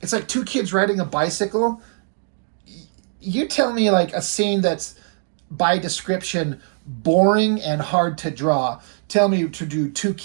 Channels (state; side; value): silent; left; digital silence